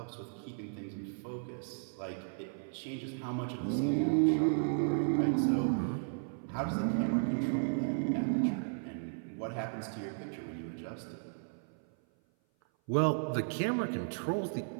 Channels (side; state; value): left; silent; 55 dB below the other